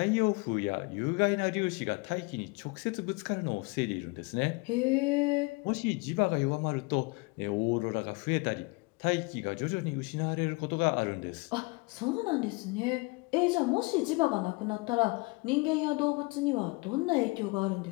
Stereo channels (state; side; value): quieter; right; 27.2 dB